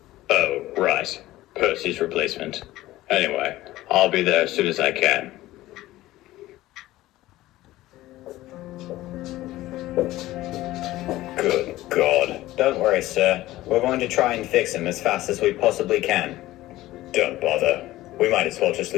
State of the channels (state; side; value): quieter; right; 16.5 dB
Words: Oh, right. Percy's replacement. Anyway, I'll be there as soon as I can. Good God. Don't worry, sir. We're going to try and fix him as fast as we possibly can. Don't bother. We might as well just